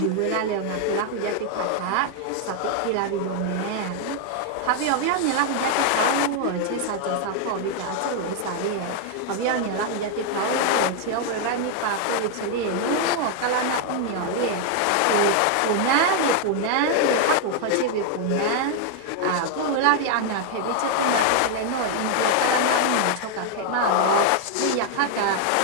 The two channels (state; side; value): different; both; correlation 0.00